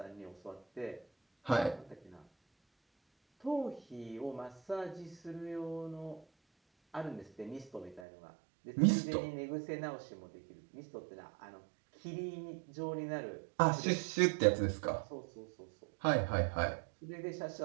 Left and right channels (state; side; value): drops out; left; at 8.1 s